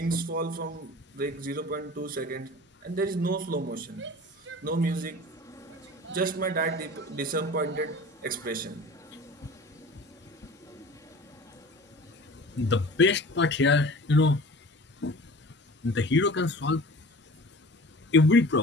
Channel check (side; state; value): both; normal; correlation 0.41